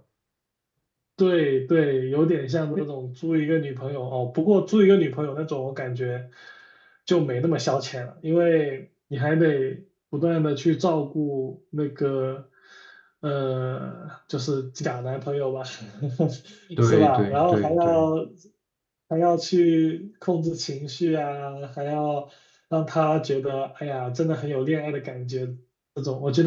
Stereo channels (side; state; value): both; identical; correlation 1.00